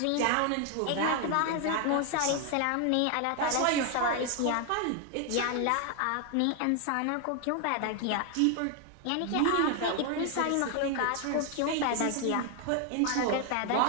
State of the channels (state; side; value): different; both; correlation 0.01